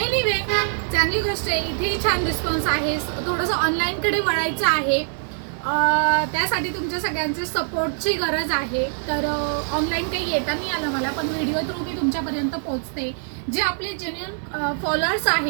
चांगली गोष्ट आहे. इथेही छान रिस्पॉन्स आहे. थोडंसं ऑनलाईनकडे वळायचं आहे. त्यासाठी तुमच्या सगळ्यांचे सपोर्टची गरज आहे. तर ऑनलाईन काही येता नाही आलं मला, पण व्हिडिओ थ्रू मी तुमच्यापर्यंत पोहोचते. जे आपले जेन्युइन फॉलोअर्स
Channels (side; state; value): left; silent; digital silence